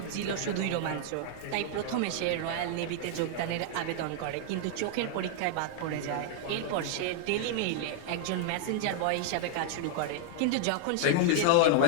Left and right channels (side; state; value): both; different; correlation 0.00